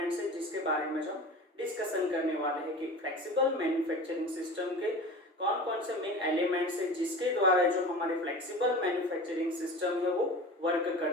है जिसके बारे में हम डिस्कशन करने वाले हैं कि फ्लेक्सिबल मैन्युफैक्चरिंग सिस्टम के कौन कौन से मेन एलिमेंट्स है जिसके द्वारा जो हमारे फ्लेक्सिबल मैन्युफैक्चरिंग सिस्टम है वो वर्क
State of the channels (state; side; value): normal; both; correlation 0.35